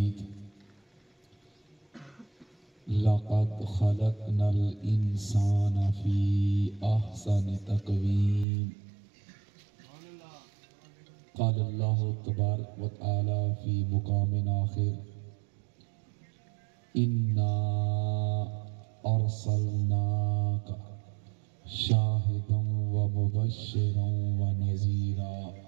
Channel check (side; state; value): left; drops out; at 8.5 s